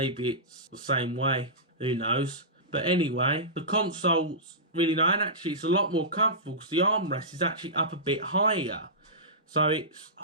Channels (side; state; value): both; normal; correlation -0.17